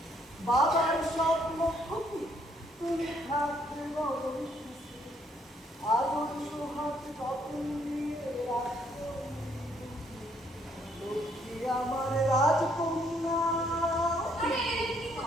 বাবার স্বপ্ন খুশি তুমি থাকতে বড় সুখে, আদর সোহাগ যত্ন নিয়ে রাখো লক্ষ্মী আমার রাজকন্যা। আরে কি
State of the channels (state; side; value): normal; both; correlation 0.68